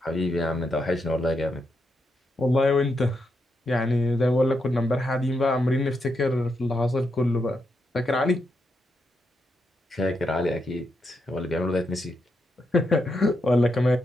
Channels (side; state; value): both; normal; correlation 0.82